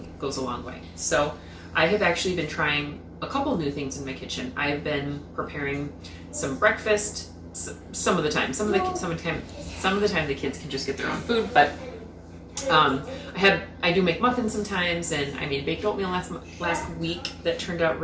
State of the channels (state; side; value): identical; both; correlation 1.00